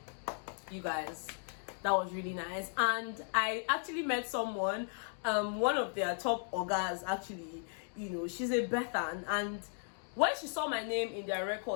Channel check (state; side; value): silent; right; 54 dB below the other